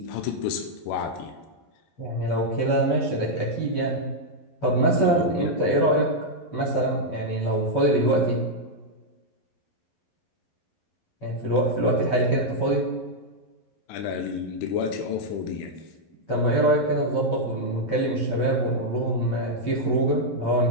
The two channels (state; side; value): late; right; 11 ms